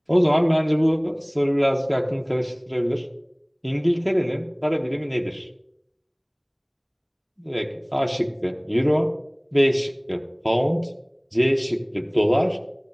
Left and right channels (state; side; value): identical; both; correlation 1.00